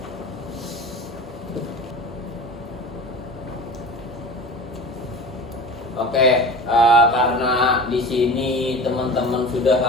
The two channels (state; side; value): normal; both; correlation 0.34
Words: Oke, karena di sini teman-teman sudah